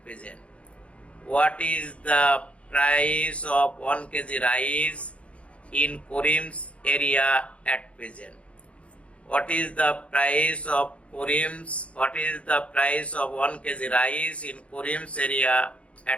present? What is the price of 1 KG rice in Korim's area at present? What is the price of Korim's? What is the price of 1 kg rice in Korim's area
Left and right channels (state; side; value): late; right; 0.062 ms